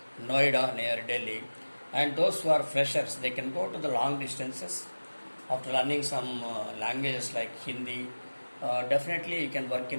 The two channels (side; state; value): both; inverted; correlation -1.00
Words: Noida near Delhi, and those who are freshers, they can go to the long distances after learning some languages like Hindi. Definitely you can work